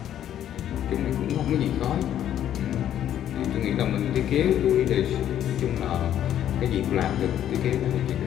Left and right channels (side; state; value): right; quieter; 10.9 dB